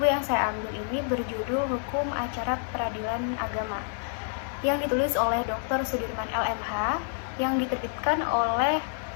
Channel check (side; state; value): right; silent; 59 dB below the other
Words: yang saya ambil ini berjudul Hukum Acara Peradilan Agama, yang ditulis oleh Dr. Sudirman LMH, yang diterbitkan oleh